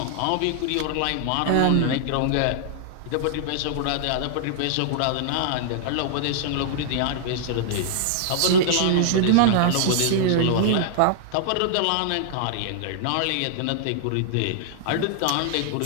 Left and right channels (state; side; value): different; both; correlation -0.01